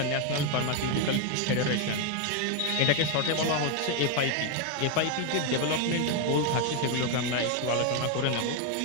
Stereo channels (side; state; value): both; different; correlation 0.01